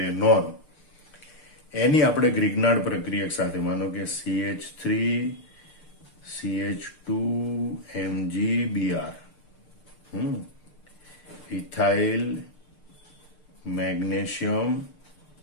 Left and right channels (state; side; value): late; right; 6.7 ms